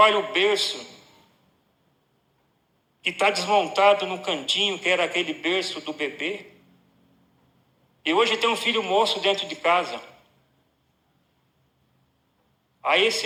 o berço, que está desmontado no cantinho, que era aquele berço do bebê. E hoje tem um filho moço dentro de casa. Aí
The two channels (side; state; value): both; identical; correlation 1.00